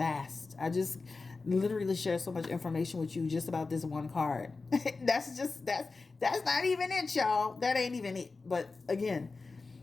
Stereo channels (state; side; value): quieter; right; 4.0 dB